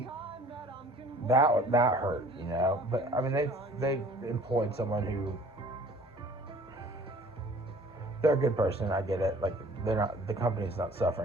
that hurt, you know. But I mean, they've employed someone who, they're a good person. I get it. Like, the company's not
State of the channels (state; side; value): normal; both; correlation 0.50